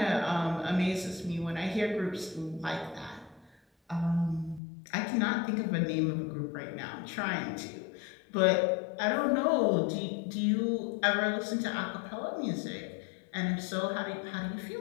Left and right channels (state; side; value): drops out; right; at 4.6 s